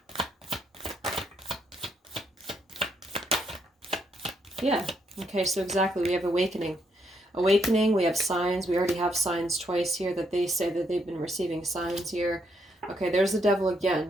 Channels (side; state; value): both; normal; correlation 0.75